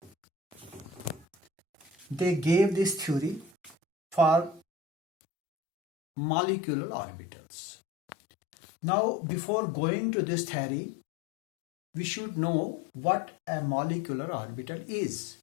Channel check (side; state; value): right; drops out; at 4.6 s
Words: they gave this theory for molecular orbitals. Now, before going to this theory, we should know what a molecular orbital is